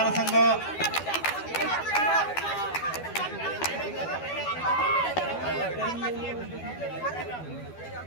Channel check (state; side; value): late; right; 12 ms